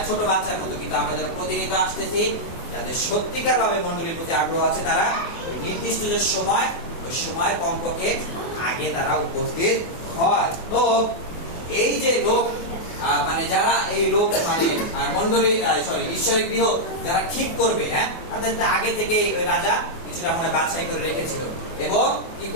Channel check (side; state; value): right; late; 24 ms